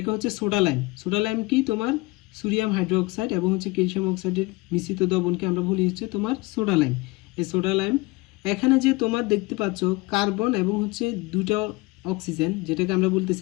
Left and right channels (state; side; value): quieter; right; 23.4 dB